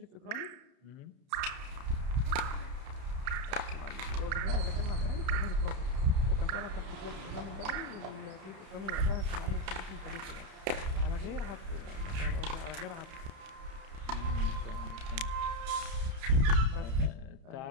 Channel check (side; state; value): left; late; 31 ms